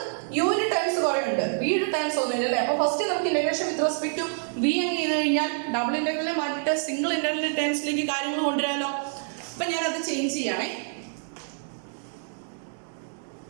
യുവിന്റെ ടൈംസ് കുറേ ഉണ്ട്, വിയുടെ ടൈംസ് ഒന്നുമില്ല അല്ലേ. അപ്പോൾ ഫസ്റ്റ് നമുക്ക് integration with respect to v അങ്ങ് ചെയ്ത് കഴിഞ്ഞാൽ ഡബിൾ ഇന്റഗ്രലിനെ മാറ്റിയിട്ട് സിംഗിൾ ഇന്റഗ്രലിന്റെ ടൈംസിലേക്ക് കാര്യങ്ങൾ കൊണ്ടുവരാമല്ലോ. അപ്പം ഞാനത് ചേഞ്ച് ചെയ്യണേ,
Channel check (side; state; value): left; silent; digital silence